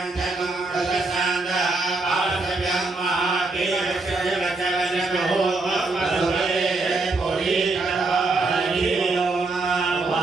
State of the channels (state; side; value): quieter; left; 3.4 dB